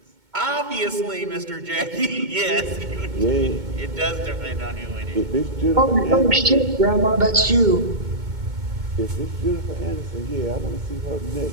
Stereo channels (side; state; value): left; late; 2.2 ms